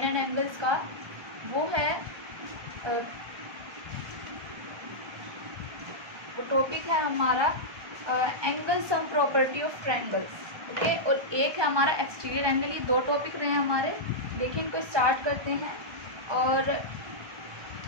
एंड एंगल्स का, वो है टॉपिक है हमारा angle sum property of triangles. Okay, और एक है हमारा एक्सटीरियर एंगल। ये दो टॉपिक रहे हैं हमारे। देखिए, इनको स्टार्ट करते हैं और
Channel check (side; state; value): left; late; 1.2 ms